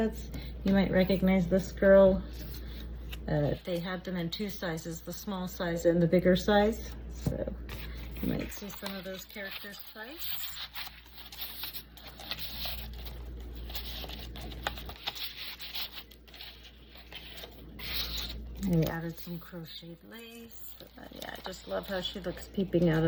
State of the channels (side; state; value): both; identical; correlation 1.00